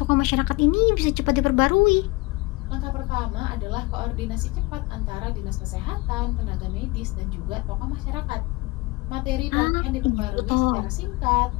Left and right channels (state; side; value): quieter; right; 23.3 dB